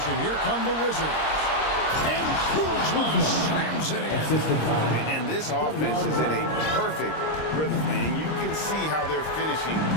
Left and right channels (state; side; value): late; right; 26 ms